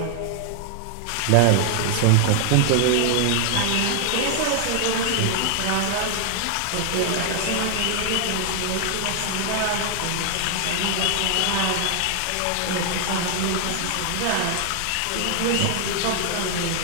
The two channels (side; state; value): both; different; correlation 0.00